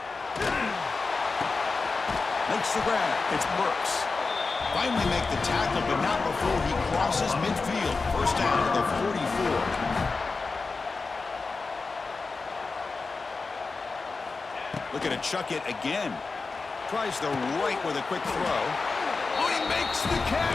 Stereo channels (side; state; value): right; quieter; 4.1 dB